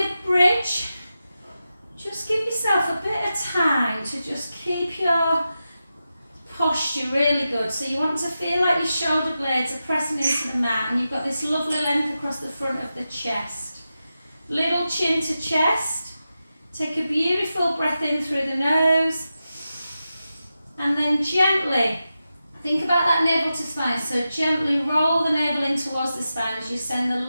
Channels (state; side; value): inverted; both; correlation -0.91